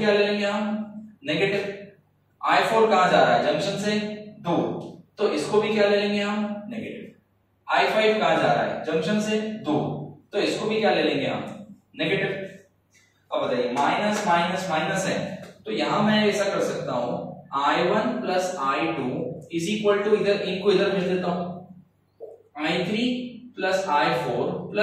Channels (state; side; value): identical; both; correlation 1.00